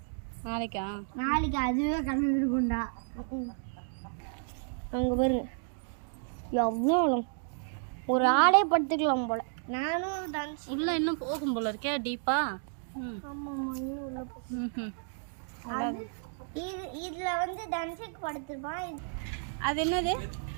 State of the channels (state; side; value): silent; left; digital silence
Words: நாளைக்கா? நாளைக்கு அதுவே கலந்துருக்கும்டா. அங்க பாருங்க எவ்வளோ ஆளும். ஒரு ஆளே படுத்துக்கலாம் போல. நானும் டான்ஸ் உள்ள இன்னும் போகும் போல இருக்கே டீப்பா. ஆமாம்மா, இன்னும் உள்ள போகும். இதுல வந்து தனுஷுக்கு படுத்துப்பான். அது என்னது?